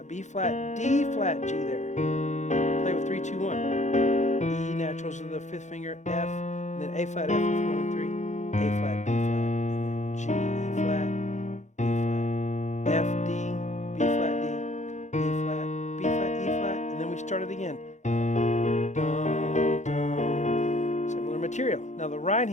B flat, D flat, G there. Play with 3, 2, 1. E naturals of the 5th finger, F, and then A flat, F with 1 and 3, A flat, B flat, and then G, E flat. F, D, B flat, D, E flat, B flat, E flat, and then we start it again. Dum, dum. Similar material. Now the right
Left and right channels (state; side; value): late; right; 0.34 ms